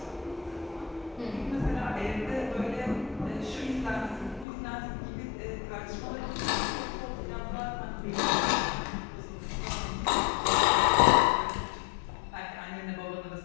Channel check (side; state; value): right; drops out; at 4.5 s